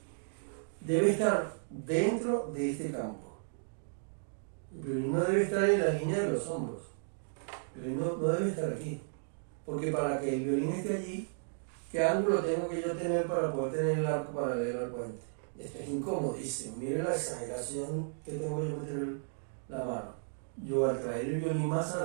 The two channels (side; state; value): left; silent; digital silence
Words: debe estar dentro de este campo. El violín no debe estar en la línea de los hombros. El violín no debe estar aquí. Porque para que el violín esté allí, ¿qué ángulo tengo que yo tener para poder tener el arco paralelo al puente? Esto es incomodísimo. Miren la exageración que tengo yo meter la mano. Yo al traer el violín más